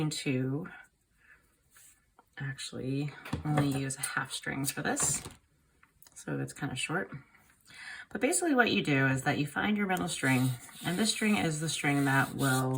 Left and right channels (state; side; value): identical; both; correlation 1.00